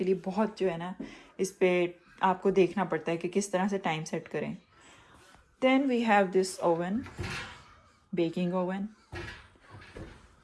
लिए। बहुत जो है ना, इस पर आपको देखना पड़ता है कि किस तरह से टाइम सेट करें। Then we have this oven, baking oven,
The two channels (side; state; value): both; identical; correlation 1.00